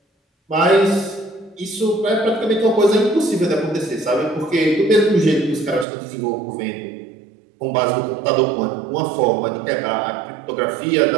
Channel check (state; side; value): drops out; left; at 5.9 s